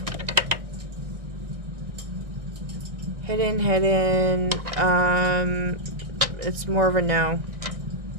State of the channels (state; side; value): late; left; 1.6 ms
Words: Hidden. It's more of a no.